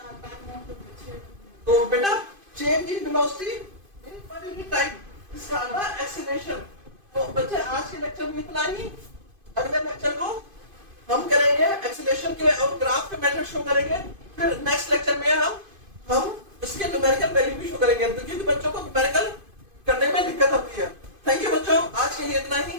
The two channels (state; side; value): late; left; 2.5 ms